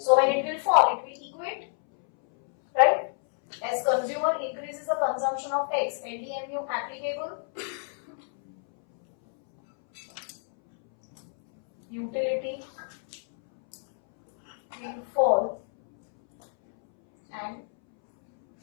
when it will fall, it will equate, right? As consumer increases the consumption of X, LDMU applicable. Utility will fall and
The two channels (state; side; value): silent; right; 60 dB below the other